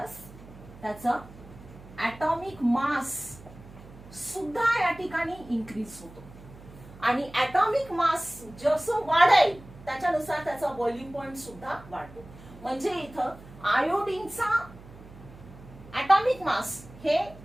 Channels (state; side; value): noise; right; hum, 19 dB below the sound